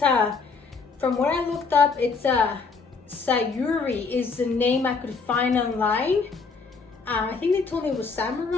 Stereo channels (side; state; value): right; quieter; 4.8 dB